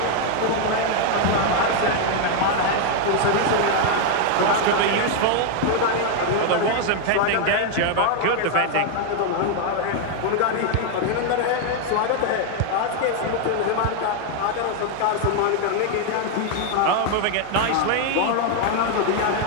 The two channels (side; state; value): both; different; correlation 0.00